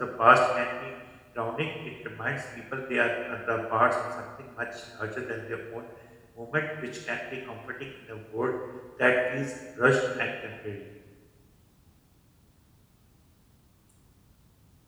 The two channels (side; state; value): both; identical; correlation 1.00